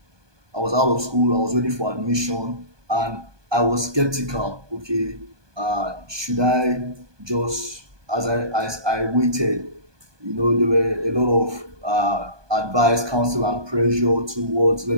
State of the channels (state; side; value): late; left; 1.2 ms